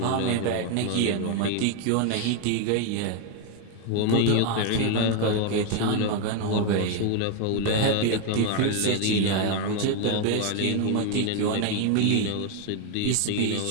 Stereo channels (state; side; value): different; both; correlation 0.01